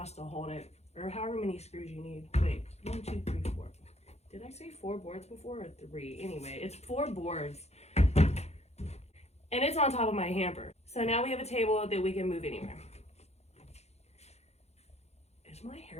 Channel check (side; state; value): right; late; 0.31 ms